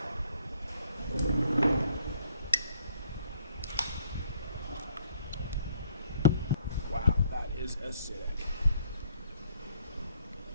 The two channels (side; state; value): both; inverted; correlation -0.64